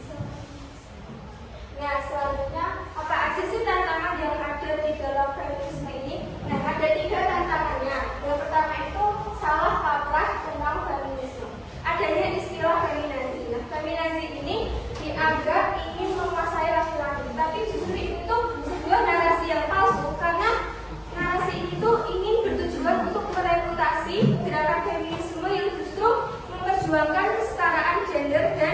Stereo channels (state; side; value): identical; both; correlation 1.00